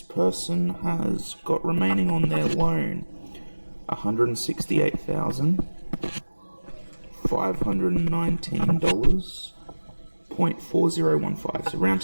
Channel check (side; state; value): both; inverted; correlation -1.00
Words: person has got remaining on their loan $168,519.4015. So round